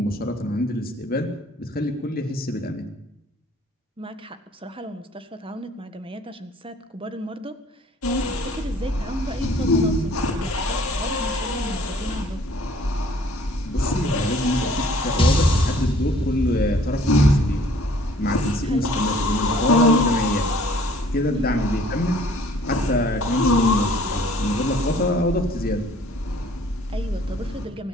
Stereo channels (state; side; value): normal; both; correlation 0.56